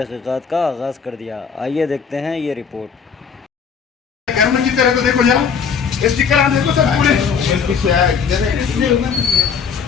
का आगाज़ कर दिया। आइए देखते हैं ये रिपोर्ट। घर में जीते रहे तो देखो जरा स्टिकर आ देखो सर पूरे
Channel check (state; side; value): quieter; right; 6.4 dB